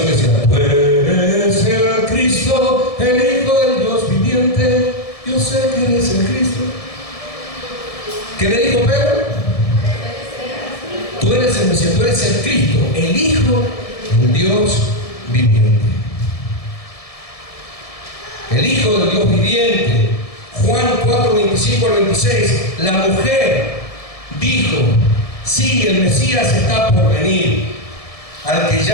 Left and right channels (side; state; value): right; late; 1.7 ms